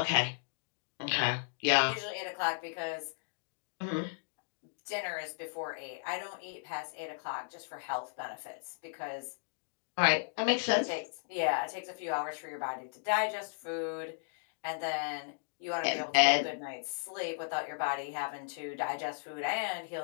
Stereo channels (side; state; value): right; silent; digital silence